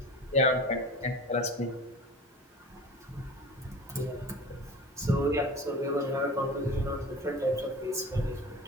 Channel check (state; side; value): normal; both; correlation 0.37